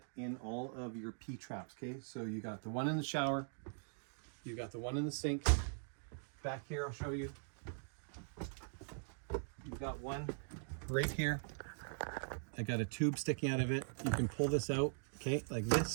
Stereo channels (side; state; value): left; silent; digital silence